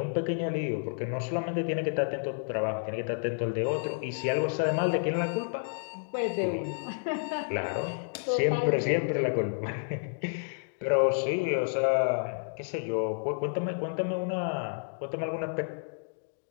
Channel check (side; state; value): right; silent; digital silence